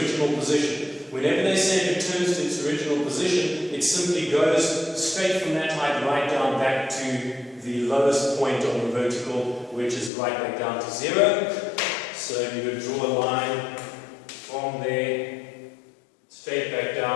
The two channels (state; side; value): drops out; right; at 10.1 s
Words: position. Whenever they say it returns to its original position, it simply goes straight from that height right down back to the lowest point on the vertical, which is right back down to 0. So you would draw a line from there straight back